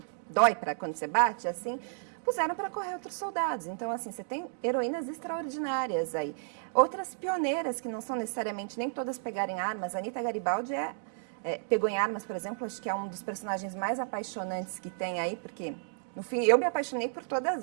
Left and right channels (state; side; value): silent; left; digital silence